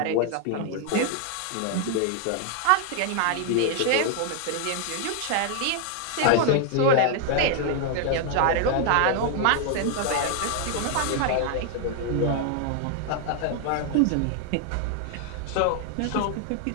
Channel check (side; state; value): both; different; correlation 0.00